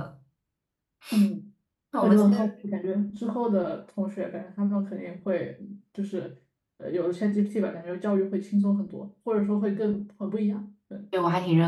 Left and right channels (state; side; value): identical; both; correlation 1.00